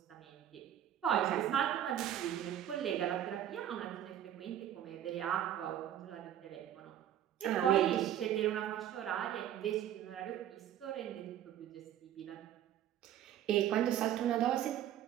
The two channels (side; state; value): left; quieter; 11.0 dB